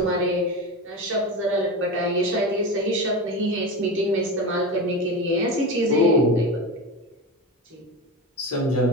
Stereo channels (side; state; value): both; normal; correlation 0.23